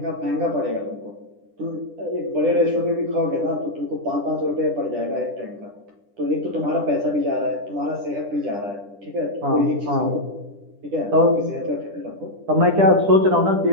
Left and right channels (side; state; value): left; late; 10 ms